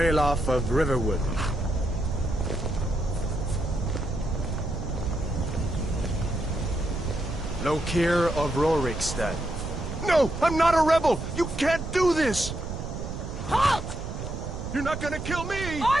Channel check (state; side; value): noise; right; rumble, 7 dB below the sound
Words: of Riverwood. Lokir of Rorikstead. No! I'm not a rebel! You can't do this! Halt! You're not gonna kill me!